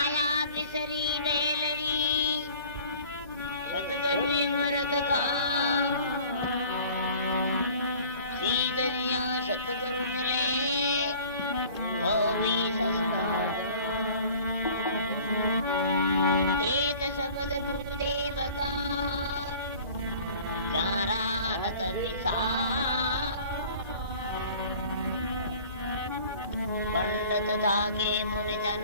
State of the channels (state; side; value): inverted; both; correlation -0.48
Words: बिसरी रेलरी सतगुरु मरत का सीधरिया सतगुरु मिले तो भी ससना एक शब्द गुरुदेव का जारा नत विसा पंडित था के मुनि